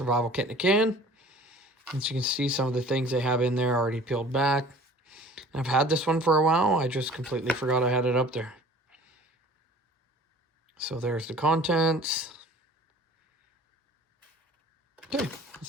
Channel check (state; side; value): normal; both; correlation 0.46